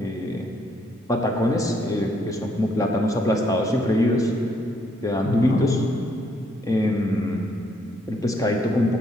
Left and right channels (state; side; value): normal; both; correlation 0.71